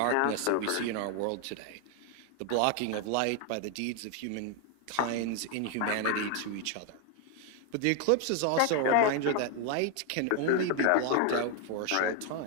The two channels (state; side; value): different; both; correlation 0.01